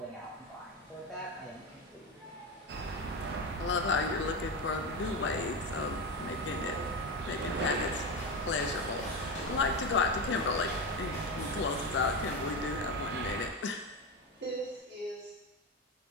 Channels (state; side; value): normal; both; correlation 0.17